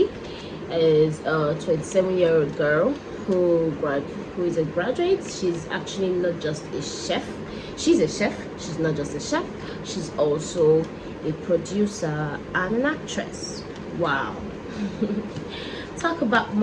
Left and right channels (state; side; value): identical; both; correlation 1.00